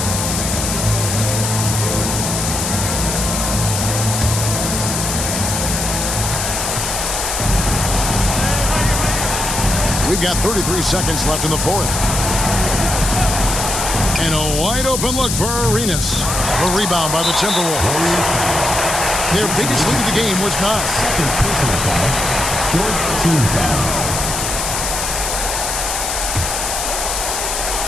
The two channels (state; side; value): noise; left; hiss, 2 dB below the sound